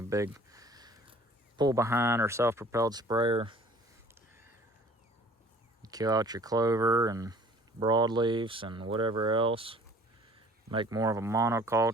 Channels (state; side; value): normal; both; correlation 0.51